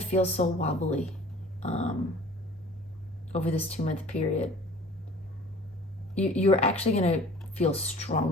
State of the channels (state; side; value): normal; both; correlation 0.47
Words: feel so wobbly over this 2-month period. You're actually going to feel